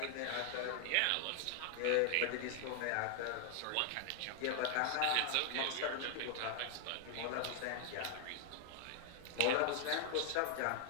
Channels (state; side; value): different; both; correlation 0.00